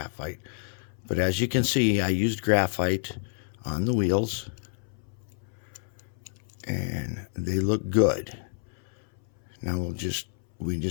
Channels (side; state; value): right; silent; 59 dB below the other